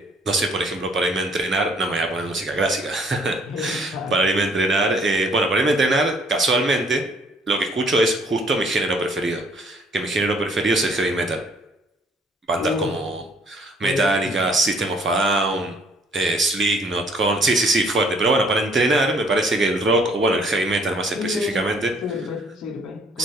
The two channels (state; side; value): normal; both; correlation 0.61